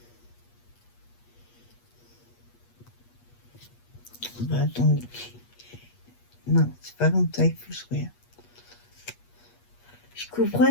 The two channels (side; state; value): right; late; 8.4 ms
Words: Bah, attendez. Non, c'est pas comme ça, il faut se regarder. Je